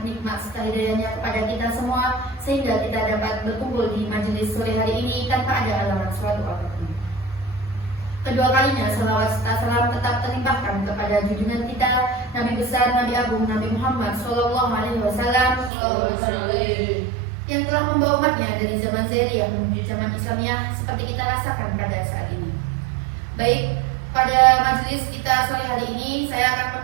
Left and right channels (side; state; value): left; drops out; at 15.7 s